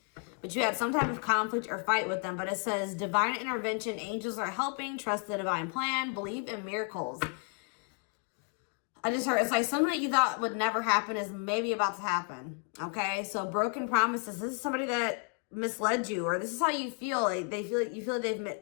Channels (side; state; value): right; quieter; 37.5 dB